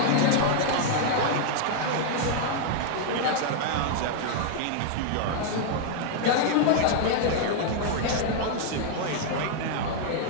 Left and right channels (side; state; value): both; different; correlation 0.00